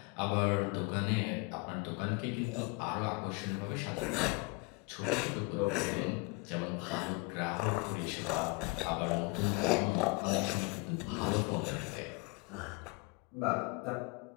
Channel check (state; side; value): quieter; right; 28.4 dB